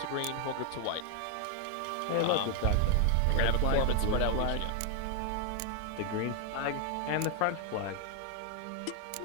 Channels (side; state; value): both; different; correlation 0.00